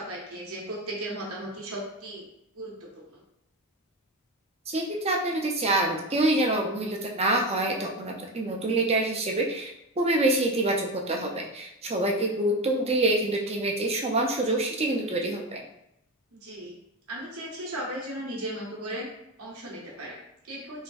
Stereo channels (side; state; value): both; normal; correlation 0.20